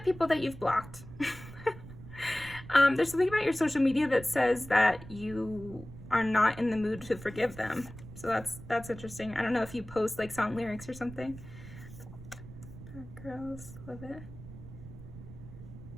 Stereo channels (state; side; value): noise; right; rumble, 15 dB below the sound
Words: that you've blocked. There's something about your social media that says that you are not in the mood to forgive them. So that's interesting. I don't know if you post like song lyrics or something. Bad girls, love it.